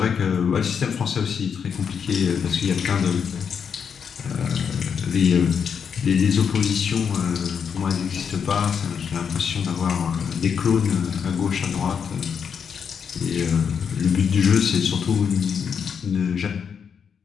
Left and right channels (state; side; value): quieter; right; 6.9 dB